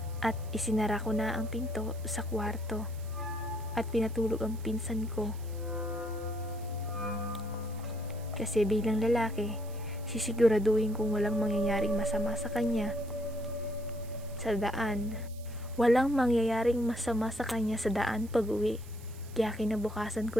at isinara ko na ang pinto sa kwarto at pinatulog ang pinsan ko. Kasi bilang lalaki, sisiguraduhin kung walang mangyayaring masama sa kanya sa daan. Walang mangyayaring masama sa kanya sa daan pag-uwi. Kaya kinabukasan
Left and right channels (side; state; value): right; noise; hiss, 22 dB below the sound